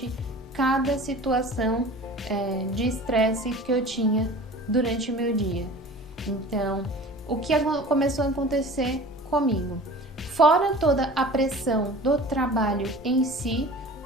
cada situação de estresse que eu tinha durante o meu dia. Então, o que começou a acontecer comigo? Fora toda a pressão do trabalho em si,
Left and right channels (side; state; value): both; normal; correlation 0.40